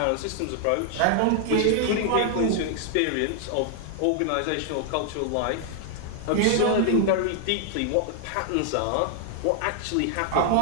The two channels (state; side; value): different; both; correlation 0.00